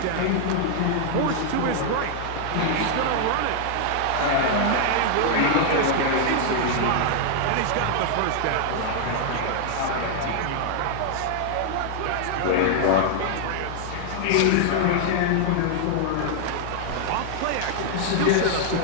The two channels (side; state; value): both; different; correlation -0.01